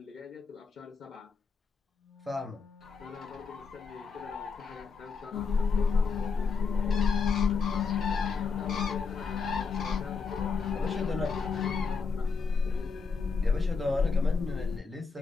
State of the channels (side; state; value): right; quieter; 5.0 dB